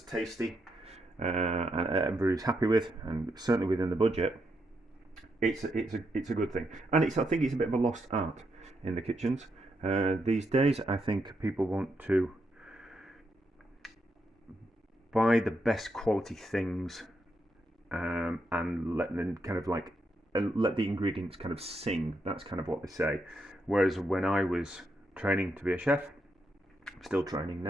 tasty and everybody's happy with, and certainly within the budget, it's a good thing. And I think it's a bit of a lost art in the kitchens these days. I think people want to buy the best quality things and let them kind of like let the ingredients kind of sing. That's kind of what they say. Whereas when I was training to be a chef, still training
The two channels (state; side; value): normal; both; correlation 0.81